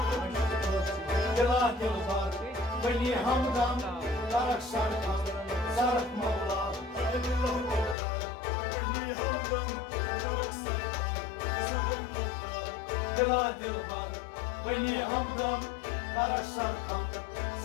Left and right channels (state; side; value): drops out; right; at 8.0 s